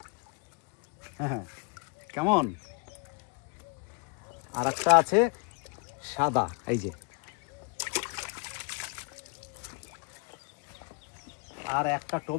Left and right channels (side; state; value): right; quieter; 34.0 dB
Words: হ্যাঁ কেমন? আর একটা আছে সাদা, এই যে। আর একটা